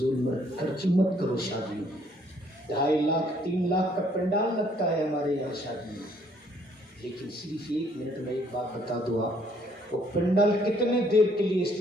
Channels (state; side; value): normal; both; correlation 0.65